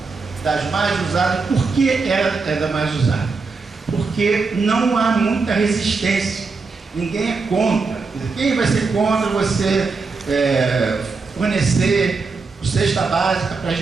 das mais usadas. Por que ela é da mais usada? Porque não há muita resistência. Ninguém é contra. Quem vai ser contra você fornecer cesta básica para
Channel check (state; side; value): quieter; left; 4.4 dB